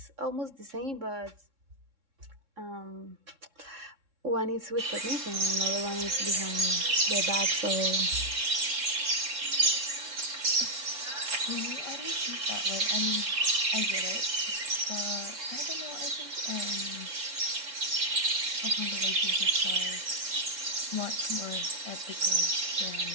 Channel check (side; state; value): left; late; 3.6 ms